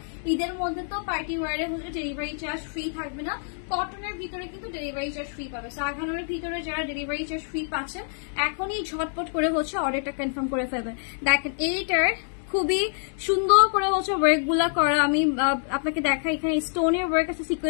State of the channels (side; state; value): right; silent; digital silence